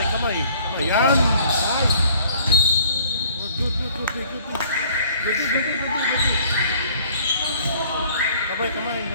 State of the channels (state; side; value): inverted; both; correlation -0.57